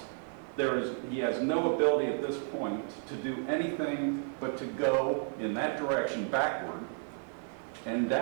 He has no ability at this point to do anything but to go in that direction backward and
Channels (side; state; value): left; silent; 56 dB below the other